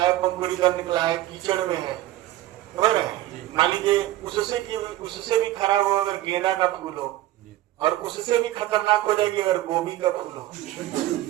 है, कीचड़ में है, मान लीजिए उससे भी खराब हो अगर गेंदा का फूल हो, और उससे भी खतरनाक हो जाएगी अगर गोभी का फूल हो।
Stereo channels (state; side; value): quieter; left; 15.1 dB